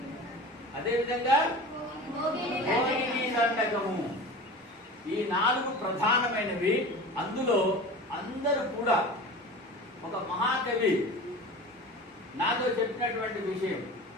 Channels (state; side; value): normal; both; correlation 0.35